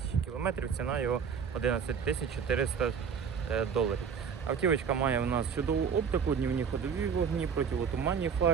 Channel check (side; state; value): left; quieter; 6.6 dB